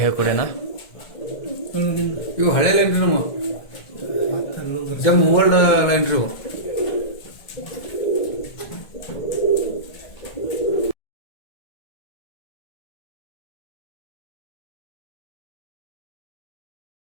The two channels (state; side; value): late; right; 1.7 ms